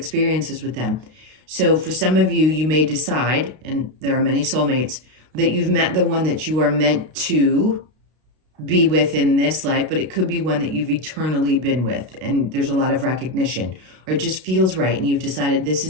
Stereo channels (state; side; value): late; left; 32 ms